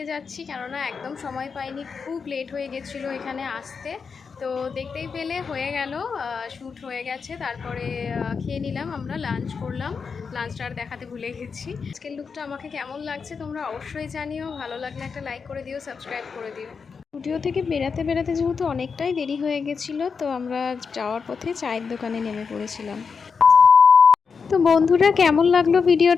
যাচ্ছি, কেননা একদম সময় পাইনি, খুব লেট হয়ে গেছিলো এখানে আসতে। তো দেখতেই পেলে হয়ে গেল, শ্যুট হয়ে গেছে। তারপরে খেয়ে নিলাম, আমরা লাঞ্চ করলাম, লাঞ্চটা আর দেখাতে ভুলে গেছি। আজকের লুকটা আমাকে কেমন লাগছে তোমরা অবশ্যই জানিও, ভালো লাগলে একটা লাইক করে দিও, সাবস্ক্রাইব করে দিও। স্টুডিও থেকে বেরাতে বেরাতে যেহেতু অনেকটাই দেরি হয়ে গেছিলো, তো আমরা যাওয়ার পথে চায়ের দোকানে নেমে পড়েছিলাম। তো বন্ধুরা, কেমন লাগলো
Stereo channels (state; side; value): quieter; right; 5.6 dB